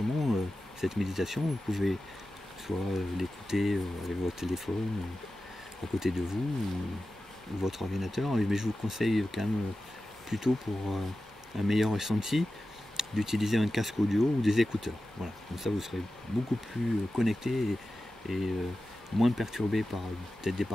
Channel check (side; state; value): both; normal; correlation 0.93